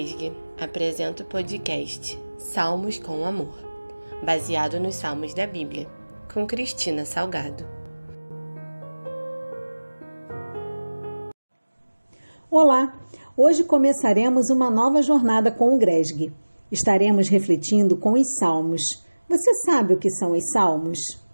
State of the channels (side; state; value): both; inverted; correlation -1.00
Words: apresenta o podcast Salmos com Amor, baseado nos Salmos da Bíblia, com Cristina Salgado. Olá! Hoje começaremos uma nova jornada com o Gresg. Estaremos refletindo com os Salmos. Você sabe o que são os Salmos?